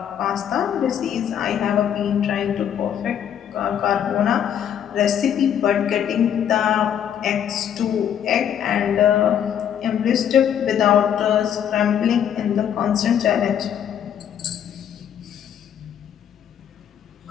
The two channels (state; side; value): quieter; right; 9.3 dB